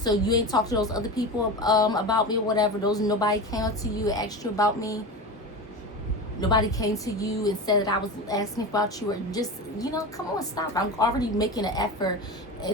you ain't talked to those other people about me or whatever? Nobody came up to you and asked you about me? Nobody came to you and said that I was asking about you, or just, you know, come on, stop. I'm already making an effort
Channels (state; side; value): normal; both; correlation 0.26